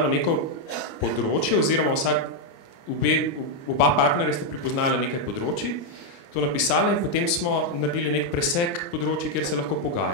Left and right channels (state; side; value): late; right; 29 ms